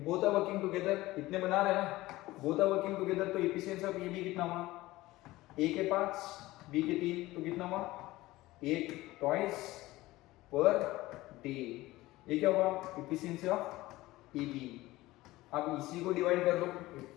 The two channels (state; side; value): quieter; right; 18.2 dB